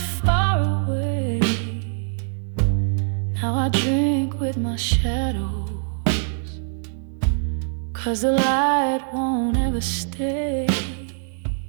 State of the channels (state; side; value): silent; left; digital silence